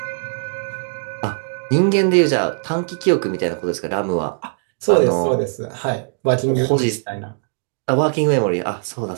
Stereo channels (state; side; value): silent; left; digital silence